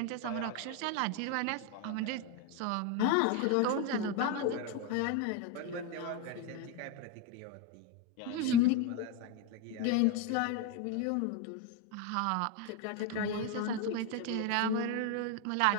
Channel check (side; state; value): both; different; correlation 0.02